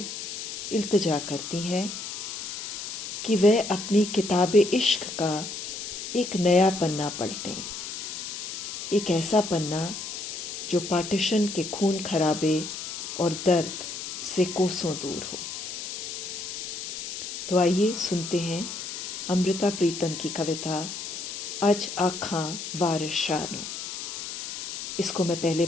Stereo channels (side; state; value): left; noise; hiss, 7 dB below the sound